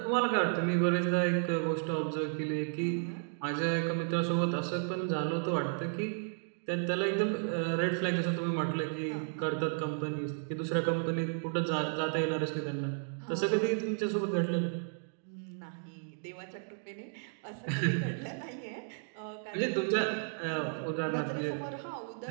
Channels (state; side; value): silent; left; digital silence